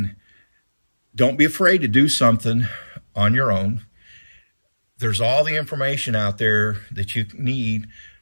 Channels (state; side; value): inverted; both; correlation -1.00